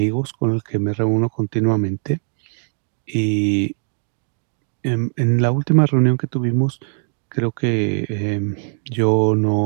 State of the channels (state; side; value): silent; left; digital silence